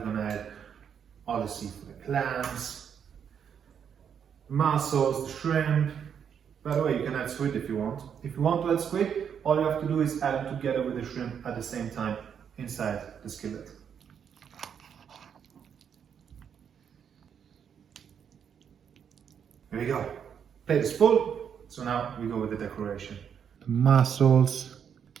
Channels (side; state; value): left; quieter; 7.8 dB